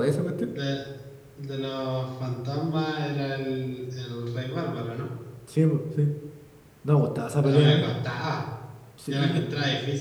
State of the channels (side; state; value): both; identical; correlation 1.00